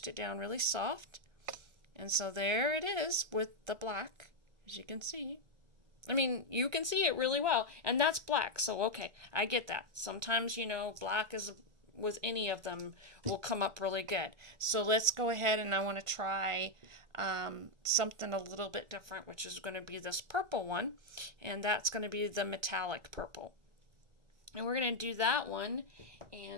it down really soft. And so there it is with the black, as you can see. I mean, you can see it really well. And that's black. So, okay, I get that. Sometimes, black is with any of them will come up really good. So let's go ahead, and I want to try something a little bit different, which is going to be this purple one, and that's going to be the metallic purple. And we're going to do that one,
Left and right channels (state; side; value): late; left; 1.4 ms